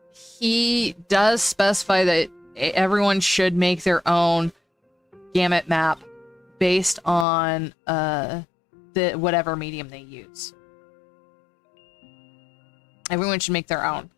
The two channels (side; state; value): right; drops out; at 7.2 s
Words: He does specify that everyone should make their own gamut map based on the whatever medium they use. Everyone should make their own.